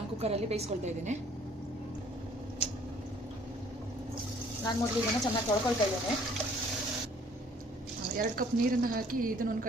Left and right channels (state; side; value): normal; both; correlation 0.58